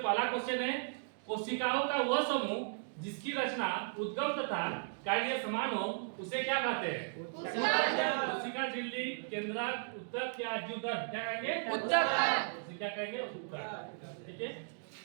क्वेश्चन है, कोशिकाओं का वह समूह जिसकी रचना उद्गम तथा कार्य समान हो उसे क्या कहते हैं? कोशिका, झिल्ली, केंद्रक, उत्तक या जीवदर? क्या कहेंगे? उत्तक। क्या कहेंगे? उत्तक। ठीक है।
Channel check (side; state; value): left; silent; digital silence